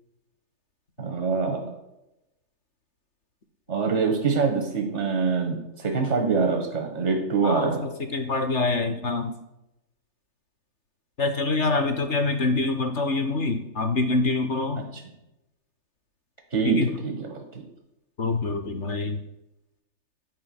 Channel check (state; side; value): late; right; 3.3 ms